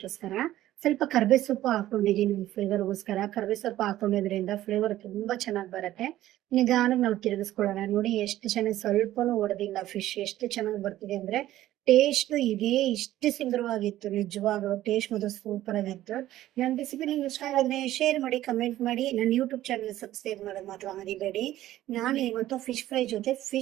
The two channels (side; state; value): left; quieter; 14.2 dB